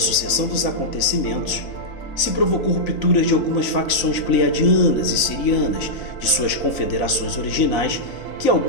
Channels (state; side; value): late; right; 4.0 ms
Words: dos acontecimentos, se provocou rupturas de algumas facções pleiadianas e sirianas de suas confederações originais, que